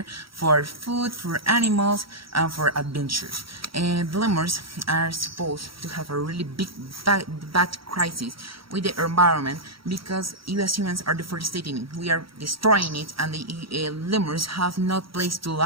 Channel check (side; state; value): left; late; 0.75 ms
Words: for food, for animals, and for adventures. And the lemurs are supposed to have a really big bad crisis with the environment, because you as humans are deforesting it. We are destroying it, and the lemurs have no place to